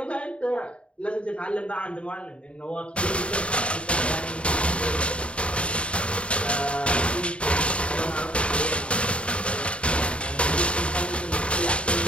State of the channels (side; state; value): right; late; 0.059 ms